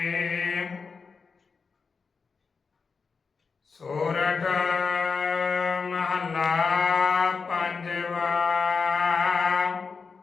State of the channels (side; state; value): right; quieter; 5.0 dB